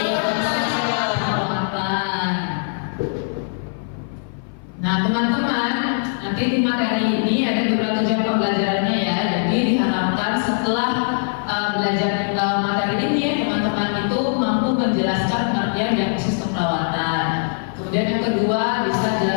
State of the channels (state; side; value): silent; right; 55 dB below the other